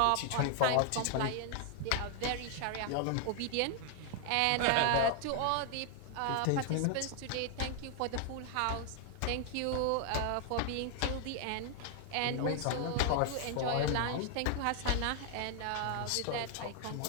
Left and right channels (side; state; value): both; different; correlation 0.00